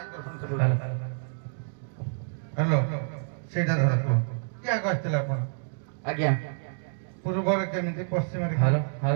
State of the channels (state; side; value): silent; left; digital silence